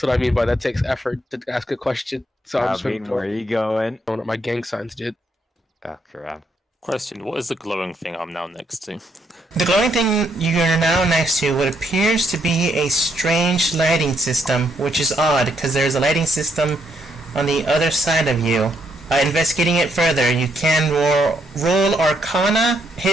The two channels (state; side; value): normal; both; correlation 0.75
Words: I mean by that takes effort to ask a question. So I'm just Where are you going? throwing up my gang signs, dude. Oh, crap. Question, what is the glowing thing I'm now next to? The glowing thing you're now next to what appears to be a strange lighting system, which is odd, because there's a lighting system on the other side of you. Investigating it further, you can roll Arcana,